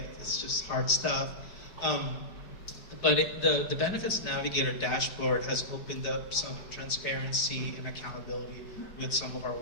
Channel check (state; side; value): late; right; 4.8 ms